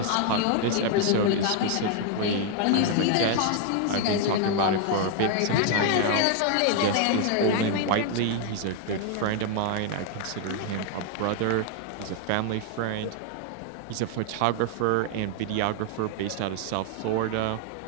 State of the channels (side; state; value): both; different; correlation 0.00